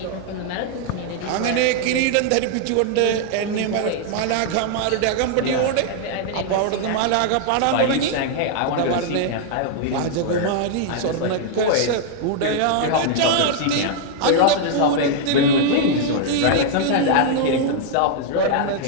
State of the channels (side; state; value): both; different; correlation 0.00